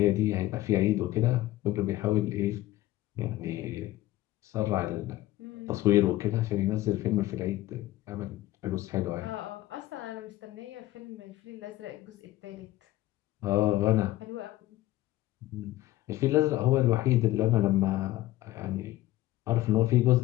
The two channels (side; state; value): right; quieter; 16.1 dB